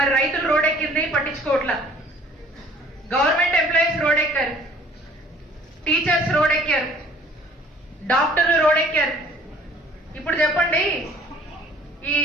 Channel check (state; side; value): normal; both; correlation 0.54